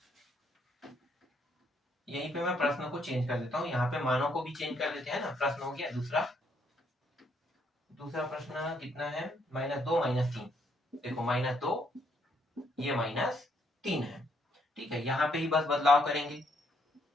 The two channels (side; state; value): both; normal; correlation 0.72